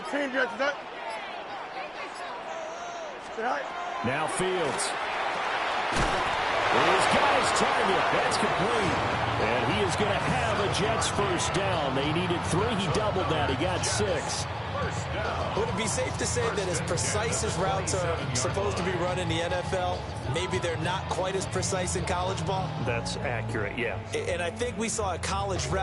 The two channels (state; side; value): identical; both; correlation 1.00